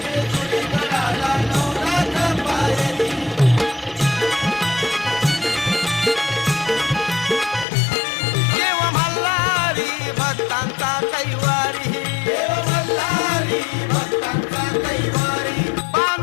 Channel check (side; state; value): right; drops out; at 7.7 s